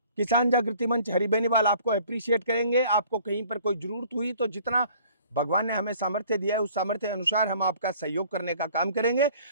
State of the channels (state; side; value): inverted; both; correlation -0.53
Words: किसान जागृति मंच हरि बेनीवाल आपको अप्रिशिएट करेंगे। आपको कहीं पर कोई जरूरत हुई तो जितना भगवान ने हमें सामर्थ्य दिया है उस सामर्थ्य अनुसार हम आपका सहयोग करने का काम करेंगे।